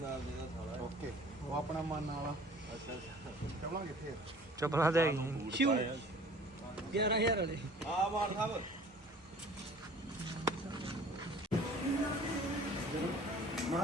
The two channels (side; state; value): both; normal; correlation 0.49